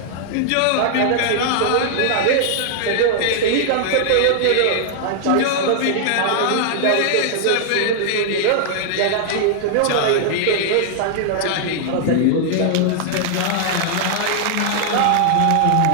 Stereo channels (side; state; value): both; different; correlation 0.00